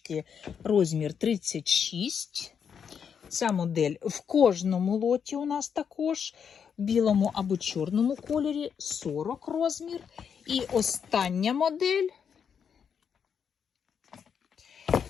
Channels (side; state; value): right; quieter; 7.2 dB